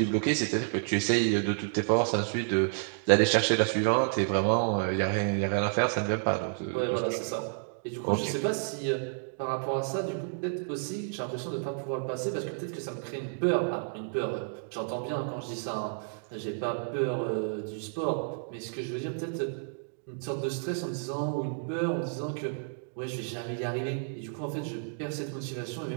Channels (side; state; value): left; silent; digital silence